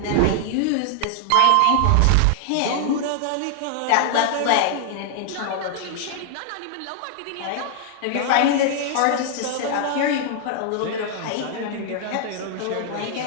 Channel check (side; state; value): both; different; correlation 0.00